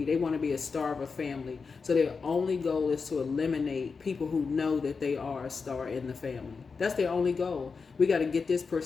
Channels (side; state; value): right; quieter; 5.0 dB